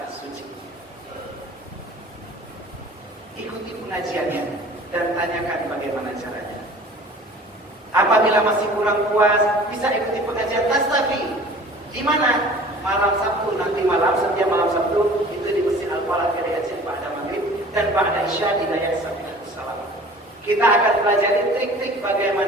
suci. Ikuti pengajiannya dan tanyakan bagaimana caranya. Apabila masih kurang puas, bisa ikuti pengajian Tastafi. Di mana? Malam Sabtu, nanti malam, setiap malam Sabtu itu di Masjid Al-Falah Keriajian Ba'da Maghrib dan Ba'da Isya di Naya Salam. Kita akan pelajari trik-trik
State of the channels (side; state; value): both; normal; correlation 0.45